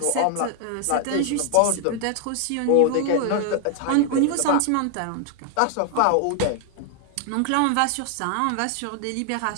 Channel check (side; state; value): both; different; correlation 0.00